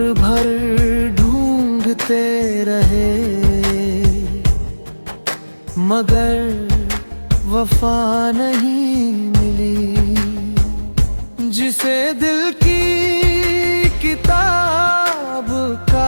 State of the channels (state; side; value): inverted; both; correlation -1.00